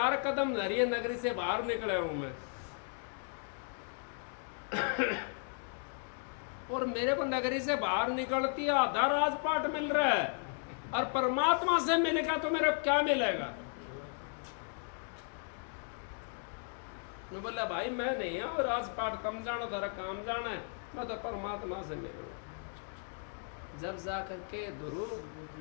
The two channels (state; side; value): silent; right; 54 dB below the other